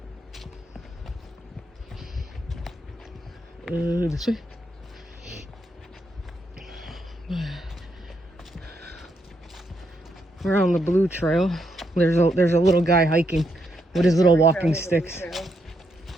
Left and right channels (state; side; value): normal; both; correlation 0.78